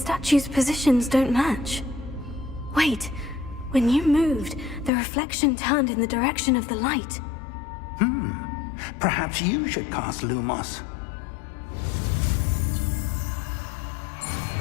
positions don't match. Wait. When you moved, the reflection turned in the direction of the light. Perhaps you should cast Lumos.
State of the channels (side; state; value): right; drops out; at 4.9 s